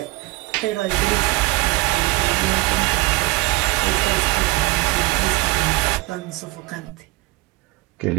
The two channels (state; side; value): quieter; left; 22.0 dB